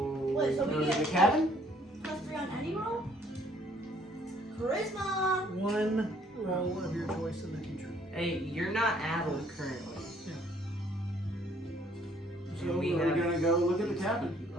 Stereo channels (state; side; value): normal; both; correlation 0.62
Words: Wait, so we go to get- the cabin? +3 on any roll? Charisma! 1 roll of your choice in the future. Hey, you're not addled currently. So we we're have- gonna go look at the cabin.